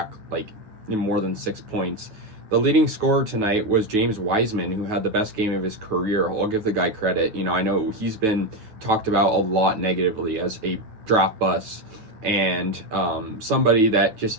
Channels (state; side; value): late; left; 9.3 ms